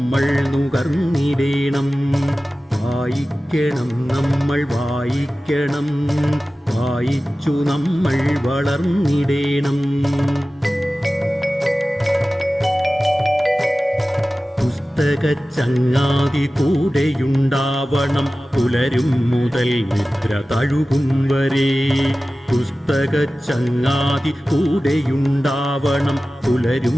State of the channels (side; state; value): both; normal; correlation 0.96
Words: നുകർന്നിടേണം. വായിക്കണം നമ്മൾ വായിക്കണം, വായിച്ചു നമ്മൾ വളർന്നിടേണം. പുസ്തകച്ചങ്ങാതി കൂടെയുണ്ടാവണം, പുലരും മുതൽ നിദ്ര തഴുകും വരെ. പുസ്തകച്ചങ്ങാതി കൂടെയുണ്ടാവണം, പുലരും